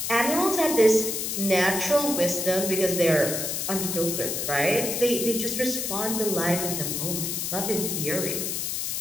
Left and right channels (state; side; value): noise; left; hiss, 2 dB below the sound